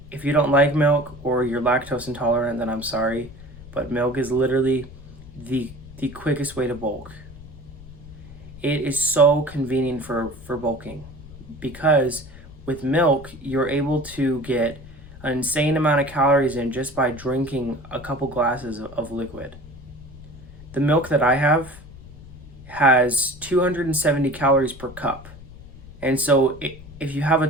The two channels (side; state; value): left; noise; rumble, 17 dB below the sound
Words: If you don't like milk or you're lactose intolerant, then I'm sorry, but milk is literally the quickest way to bulk. It is so convenient for bulking, because with milk, you're able to get an insane amount of calories in just by drinking a couple glasses of liquid. The milk that I have has 270 calories per cup. And so if you have a